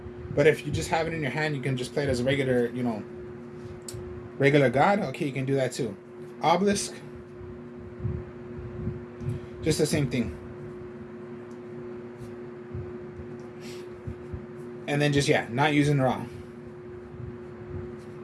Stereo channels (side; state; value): both; identical; correlation 1.00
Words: But if you just have it in your hand, you can just play it as a regular, regular god. Okay, you can do that too. Obelisk. Just the same thing. And then just, yeah, not using Ra.